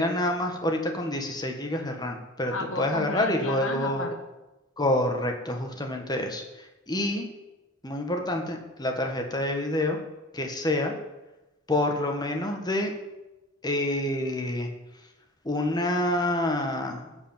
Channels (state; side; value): normal; both; correlation 0.38